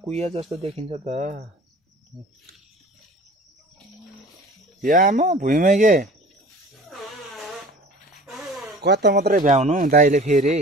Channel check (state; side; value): normal; both; correlation 0.43